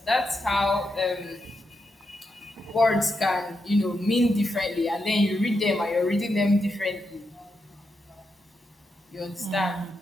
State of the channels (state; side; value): normal; both; correlation 0.85